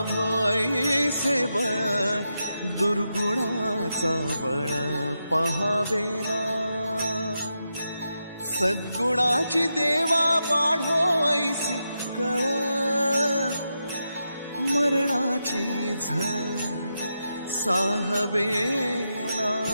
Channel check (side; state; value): both; inverted; correlation -0.86